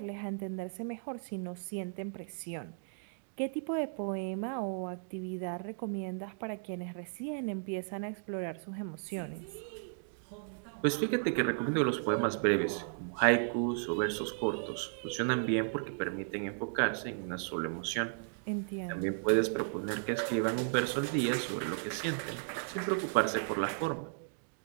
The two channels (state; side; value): silent; left; digital silence